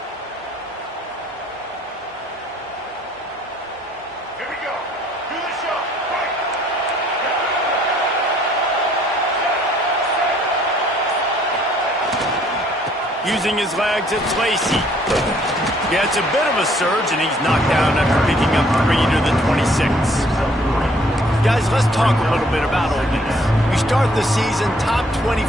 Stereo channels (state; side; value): normal; both; correlation 0.62